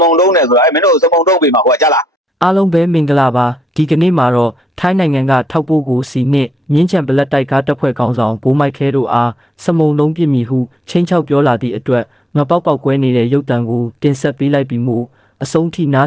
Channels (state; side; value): normal; both; correlation 0.76